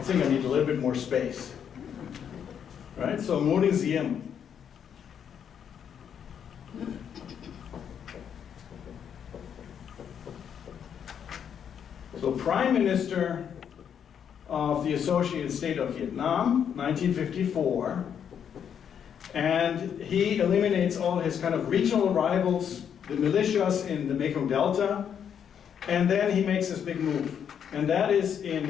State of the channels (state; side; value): quieter; right; 8.2 dB